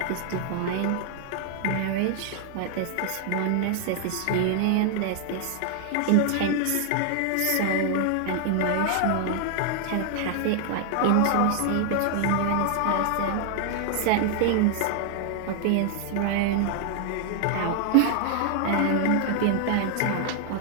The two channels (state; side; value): different; both; correlation 0.00